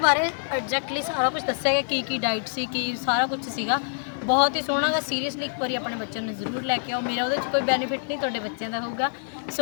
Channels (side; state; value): right; silent; digital silence